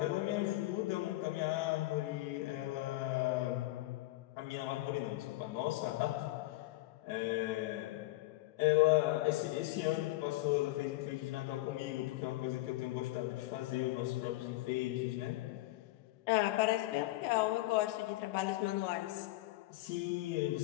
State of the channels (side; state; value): right; quieter; 18.6 dB